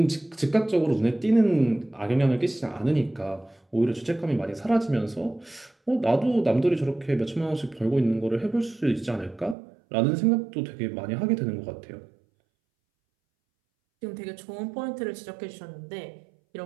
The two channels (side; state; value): left; drops out; at 9.6 s